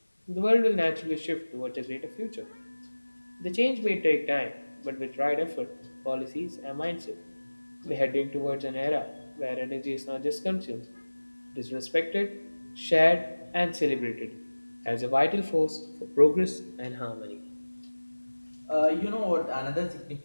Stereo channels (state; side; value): inverted; both; correlation -1.00